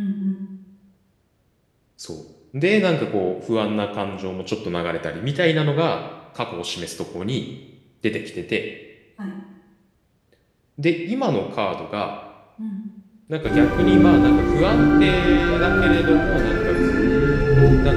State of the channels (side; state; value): both; identical; correlation 1.00